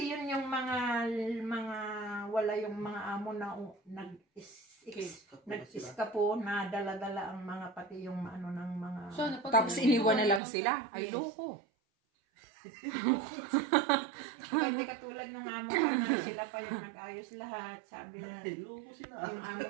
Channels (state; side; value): drops out; left; at 10.4 s